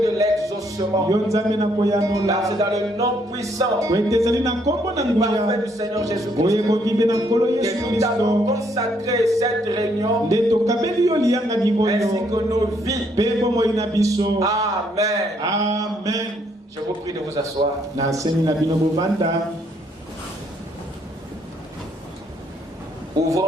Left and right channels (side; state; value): both; normal; correlation 0.70